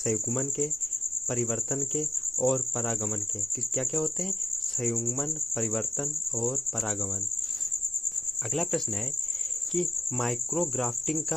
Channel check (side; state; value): both; normal; correlation 0.90